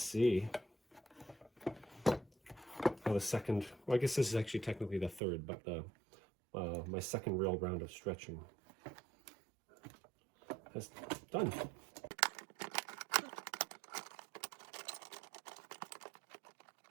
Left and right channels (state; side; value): drops out; left; at 5.2 s